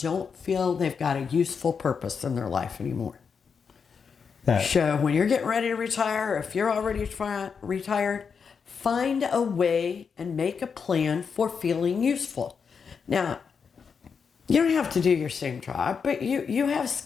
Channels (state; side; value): quieter; right; 6.1 dB